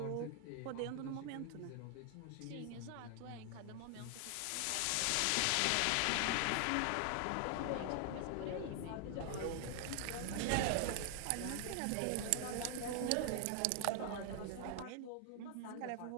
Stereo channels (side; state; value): both; different; correlation 0.00